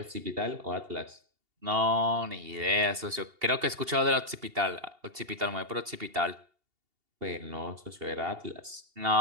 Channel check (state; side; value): late; left; 2.8 ms